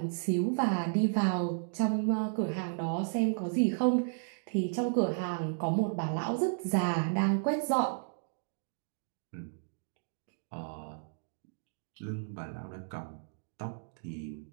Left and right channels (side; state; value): left; silent; digital silence